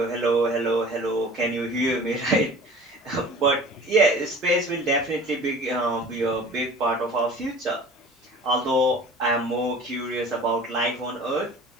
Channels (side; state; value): both; normal; correlation 0.43